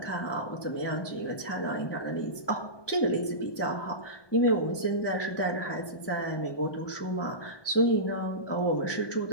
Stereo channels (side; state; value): right; late; 1.2 ms